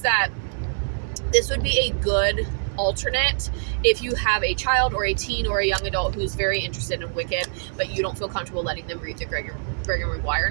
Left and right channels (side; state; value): left; silent; digital silence